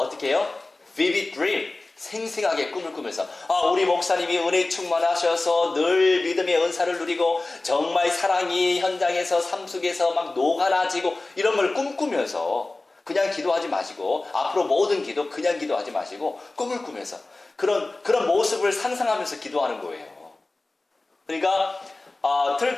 해요? Vivid dream. 생생하게 꿈을 꾸면서 우리 목사님이 은혜 충만하셔서 늘 믿음의 은사를 누리고 정말 사랑이 현장에서 삶 속에서 막 녹아나지고 이런 걸 꿈꾸면서 그냥 기도하지 마시고 앞으로 모든 기도 그냥 기도하지 마시고 꿈을 꾸면서 그런 모습을 상상하면서 기도하는 거예요. 그러니까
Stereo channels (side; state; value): right; quieter; 3.1 dB